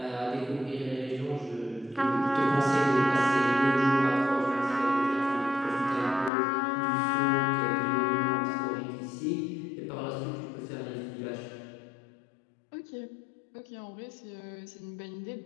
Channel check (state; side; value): drops out; right; at 6.3 s